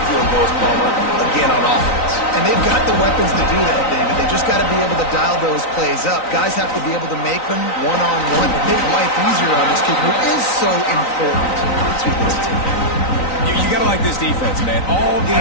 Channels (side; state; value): right; late; 3.9 ms